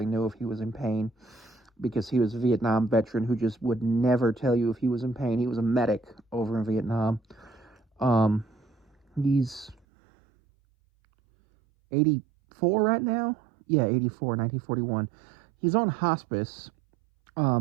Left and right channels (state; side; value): drops out; left; at 9.8 s